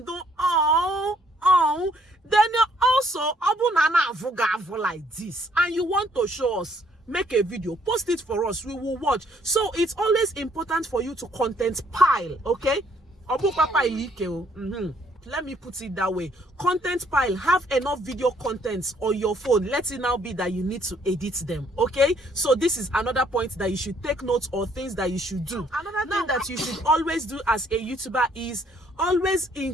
do, then also, like this, and you want to show us, make a video, post it for us, we will watch. So it's always important for you to content pile, okay? Let me put it that way. Content pile. Have enough video contents on your phone. Let it now be that you need to edit them, okay? So this is another point that you should take notes, or things that you should do. Another thing that you should always do as a YouTuber is always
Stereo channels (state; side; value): normal; both; correlation 0.65